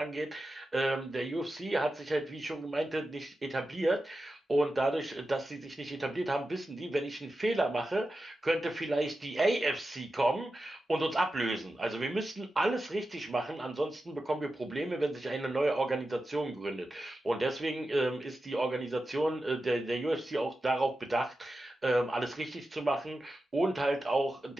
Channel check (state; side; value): normal; both; correlation 0.92